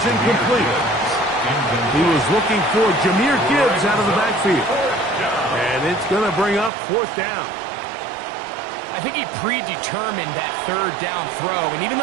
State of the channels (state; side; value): drops out; left; at 6.7 s